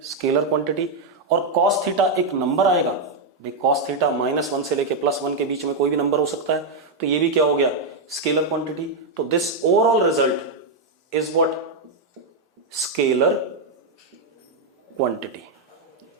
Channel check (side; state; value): left; quieter; 3.3 dB